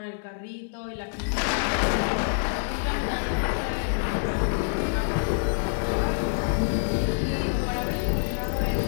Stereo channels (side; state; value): right; silent; digital silence